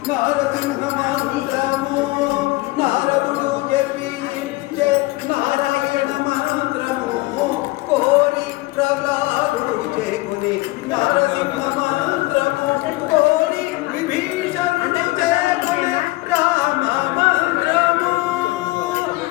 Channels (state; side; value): quieter; right; 21.0 dB